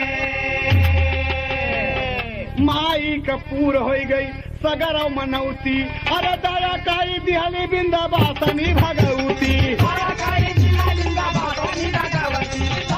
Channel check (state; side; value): identical; both; correlation 1.00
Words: माई का पूर हो गई सगर मनौती अरे दया काई दिहली बिंदाबासनी भगवती